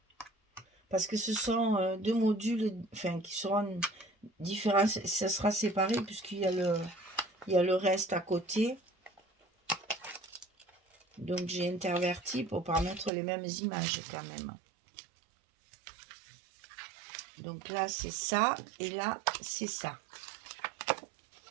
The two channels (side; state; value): left; drops out; at 13.1 s